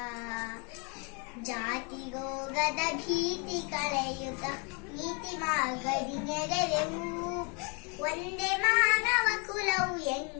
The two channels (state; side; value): quieter; right; 34.2 dB